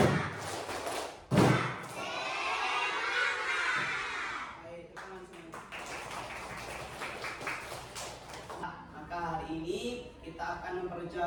Hari ini kita akan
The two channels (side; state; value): both; identical; correlation 1.00